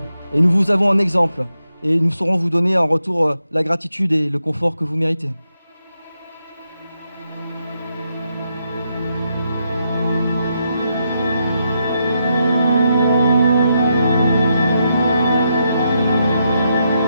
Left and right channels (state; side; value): inverted; both; correlation -0.82